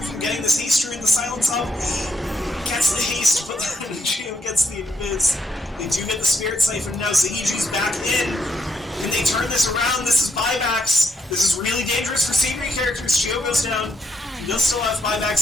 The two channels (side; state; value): both; normal; correlation 0.77